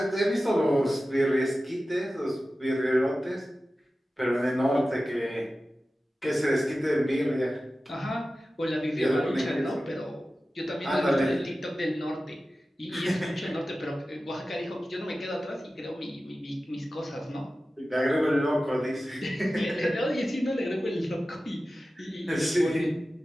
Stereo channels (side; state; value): both; normal; correlation 0.95